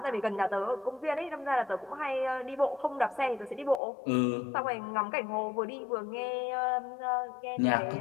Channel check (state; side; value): drops out; right; at 3.8 s